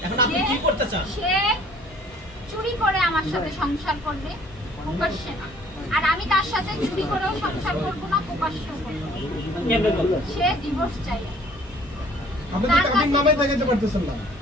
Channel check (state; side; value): normal; both; correlation 0.56